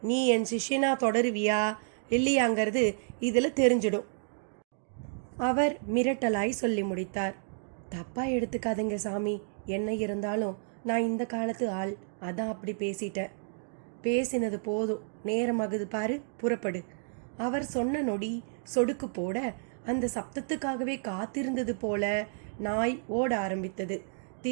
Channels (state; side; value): silent; left; digital silence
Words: நீ என் சிஷ்யனா தொடருவியா இல்லையாங்கிறது இதில் தெரிஞ்சிடும். அவர் மிரட்டலாய் சொல்லி முடித்தார். தப்பா எடுத்துக்காதீங்க சாமி, என்ன இருந்தாலும் நான் இந்த காலத்து ஆள், அதான் அப்படி பேசிட்டேன். பேசினது போதும், நேரமாகுது பாரு, புறப்படு. அவர் சொன்ன நொடி சொடுக்கு போட அந்த சப்தத்துக்காகவே காத்திருந்தது போல நாய் ஓட ஆரம்பித்தது.